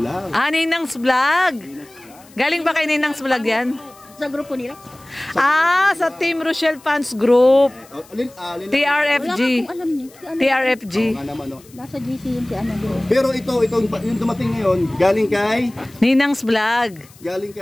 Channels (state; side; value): noise; left; hiss, 25 dB below the sound